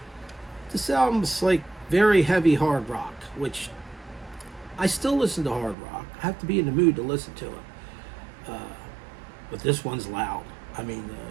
This album's like very heavy hard rock, which I still listen to hard rock. I have to be in the mood to listen to it. But this one's loud. I mean,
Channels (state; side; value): drops out; left; at 5.8 s